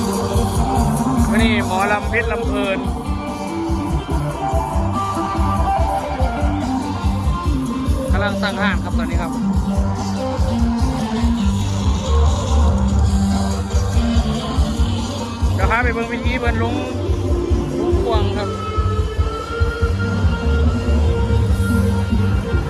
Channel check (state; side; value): identical; both; correlation 1.00